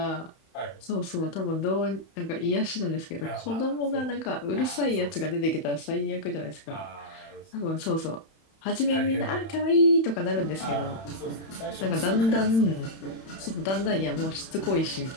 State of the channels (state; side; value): late; right; 31 ms